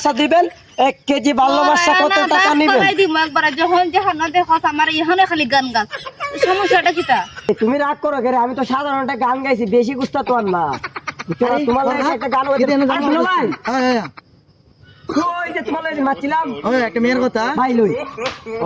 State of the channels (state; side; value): identical; both; correlation 1.00